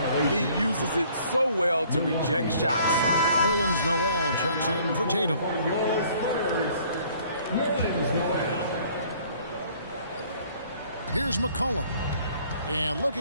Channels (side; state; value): both; inverted; correlation -0.58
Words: He uses it so well to reject shots. Nerlens Noel checks in for Tatum. Your Spurs, Nerlens Noel. Here's McCollum. And